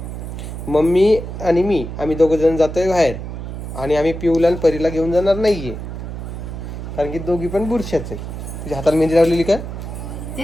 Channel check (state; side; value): noise; right; hum, 8 dB below the sound